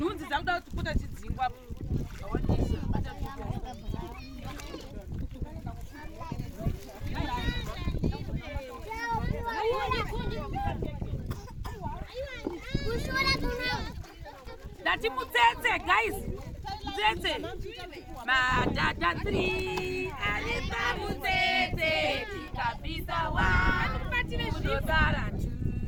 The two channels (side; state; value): both; identical; correlation 1.00